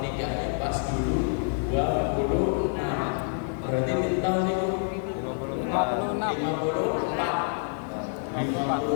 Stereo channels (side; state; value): right; silent; 60 dB below the other